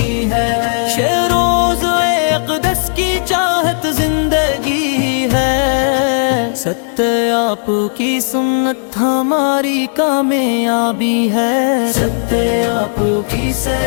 ہے، شیروز اقدس کی چاہت زندگی ہے، ستیہ آپ کی سنت ہماری کامیابی ہے، ستیہ آپ کی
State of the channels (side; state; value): right; silent; digital silence